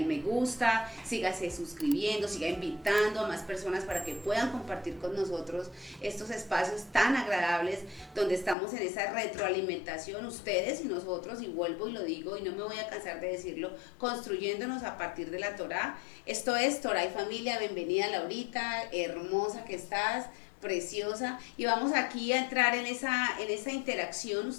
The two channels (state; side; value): drops out; right; at 8.6 s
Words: me gusta, sígase suscribiendo, siga invitando a más personas para que puedan compartir con nosotros estos espacios tan agradables donde estamos en esa retroalimentación, ustedes y nosotros, y vuelvo y lo digo y no me voy a cansar de decirlo, construyéndonos a partir de la Torá. Esto es Torá y Familia. Bienvenida, Laurita, hermosa que estás, preciosa, y vamos aquí a entrar en esa interacción